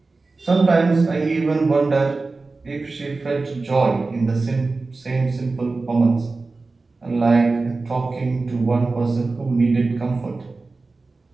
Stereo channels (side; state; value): left; quieter; 3.7 dB